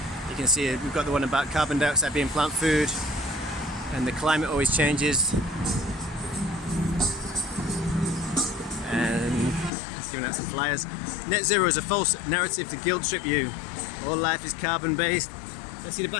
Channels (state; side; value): drops out; right; at 9.7 s